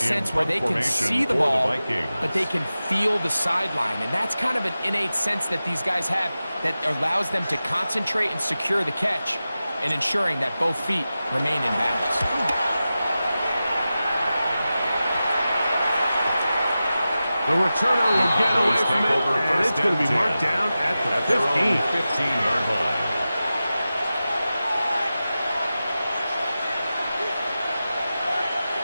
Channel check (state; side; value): inverted; both; correlation -0.94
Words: where they can see the the ball, Vikings. but they can feel the sideline. And that's kind of an innate sense that these guys have that allows them to concentrate and secure the catch and ensuring that both feet remain in bounds. The returner will get away from it, and it's going to be marked down at the 15. 15-yard line.